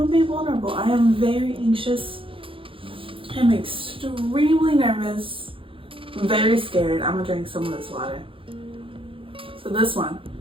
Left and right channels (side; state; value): left; late; 0.26 ms